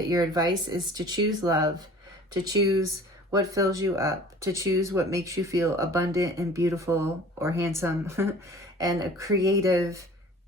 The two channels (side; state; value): both; normal; correlation 0.46